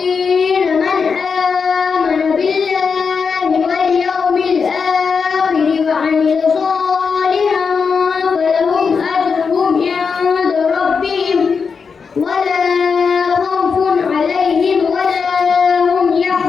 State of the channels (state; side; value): quieter; right; 5.6 dB